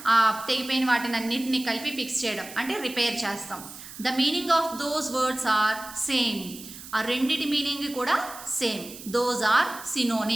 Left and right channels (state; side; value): noise; right; hiss, 14 dB below the sound